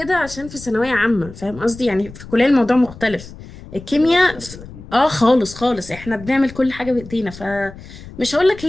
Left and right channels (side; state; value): left; noise; rumble, 16 dB below the sound